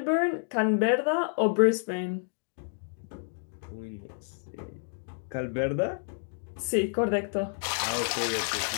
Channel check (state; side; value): silent; right; digital silence